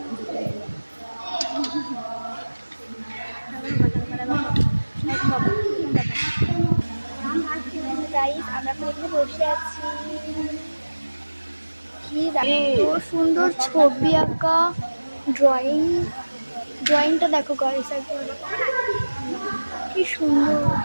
এখানে বসে আছি। কি এত সুন্দর ছবি আঁকা, ড্রয়িংটা দেখো গাইস, কি সুন্দর।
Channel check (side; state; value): both; inverted; correlation -1.00